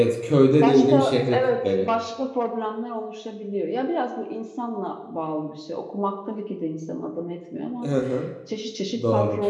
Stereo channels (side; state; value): both; identical; correlation 1.00